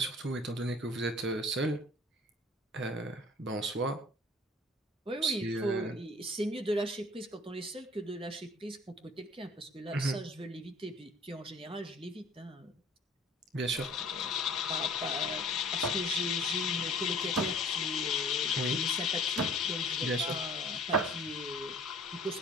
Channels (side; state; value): both; normal; correlation 0.49